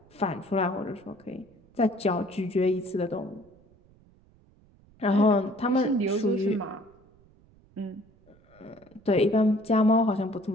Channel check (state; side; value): noise; right; rumble, 29 dB below the sound